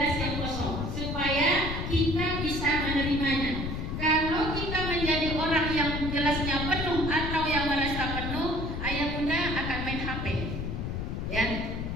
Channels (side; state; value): left; noise; rumble, 3 dB below the sound